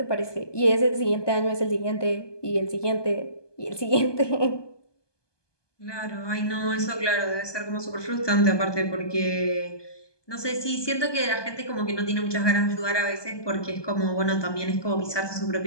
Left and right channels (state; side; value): late; right; 1.2 ms